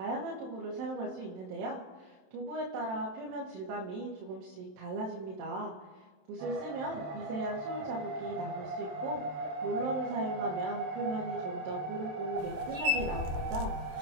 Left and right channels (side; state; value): left; late; 27 ms